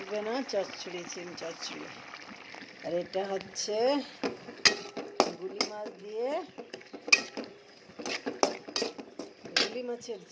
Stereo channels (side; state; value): both; identical; correlation 1.00